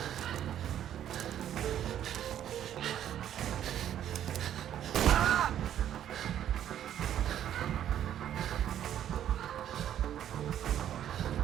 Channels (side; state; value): left; quieter; 10.7 dB